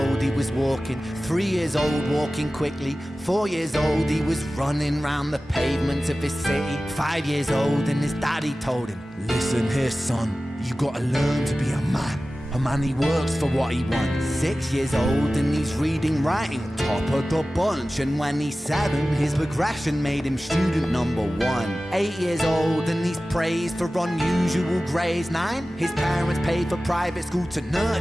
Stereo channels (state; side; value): normal; both; correlation 0.96